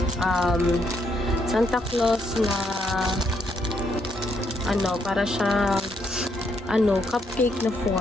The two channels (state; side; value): normal; both; correlation 0.74